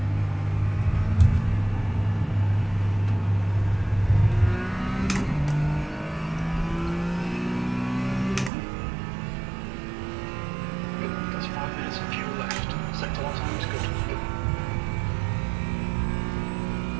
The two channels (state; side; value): drops out; left; at 8.5 s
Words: That's 5 minutes of fuel left. Sector one time is good.